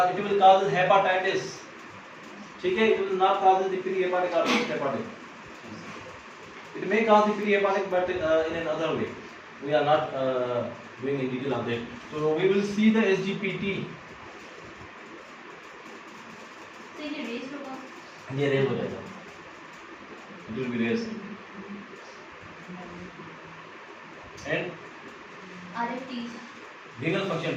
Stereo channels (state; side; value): identical; both; correlation 1.00